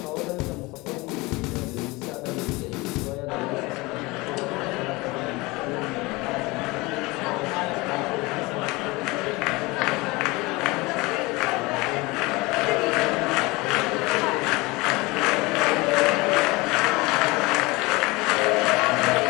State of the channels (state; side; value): quieter; right; 23.2 dB